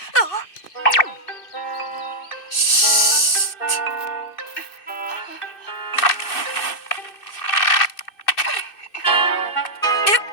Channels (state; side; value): late; right; 2.6 ms